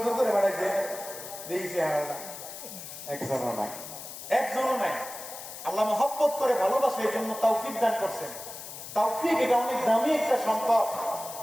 করে বাড়াইছে, দিয়েছে একজনও নাই, একজনও নাই। আল্লাহ মহব্বত করে ভালোবাসে, এই জন্য তৌফিক দান করছেন। তৌফিক এটা অনেক দামি একটা সম্পদ।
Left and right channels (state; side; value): noise; left; hiss, 11 dB below the sound